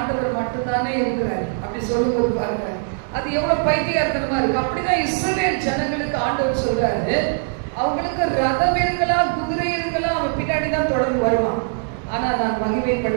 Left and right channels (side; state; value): left; silent; digital silence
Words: மட்டும்தானே இருக்கிறாரு அப்படி சொல்லும்போது பாருங்க, அது எவ்வளவு பைத்தியகாரத்தனமா இருக்கு. அப்படிதான் இஸ்ரவேல் ஜனங்களுக்கு ஆண்டவர் சொல்றாரு, அவங்களுக்கு ரதம் இருக்கலாம், குதிரை இருக்கலாம், அவன் பின்னாடிதான் தொடர்ந்து வருவான். ஆனா நான்